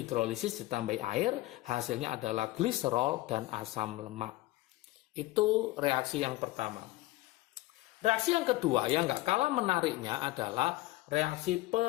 hidrolisis ditambah air, hasilnya adalah gliserol dan asam lemak. Itu reaksi yang pertama. Reaksi yang kedua yang nggak kalah menariknya adalah reaksi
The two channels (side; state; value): right; quieter; 18.8 dB